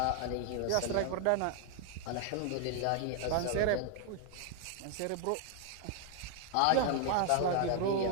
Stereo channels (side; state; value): both; different; correlation 0.00